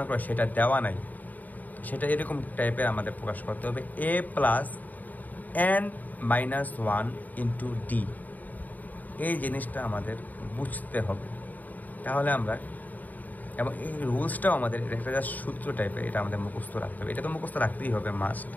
করো সেটা দেওয়া নাই, সেটা এরকম টাইপের আমাদের প্রকাশ করতে হবে a + n - 1 × d। এই জিনিসটা আমাদের বুঝতে হবে, তাহলে আমরা, এবং এই রুলসটাও আমাদের একটা জাস্ট সূত্র টাইপের, এটা আমাদের মুখস্থ রাখতে হবে। এটা তো মুখস্থ রাখতেই হবে মাস্ট,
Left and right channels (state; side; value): late; right; 0.081 ms